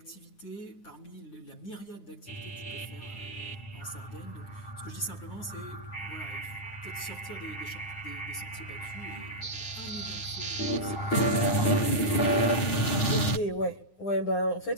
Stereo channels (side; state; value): right; late; 9.8 ms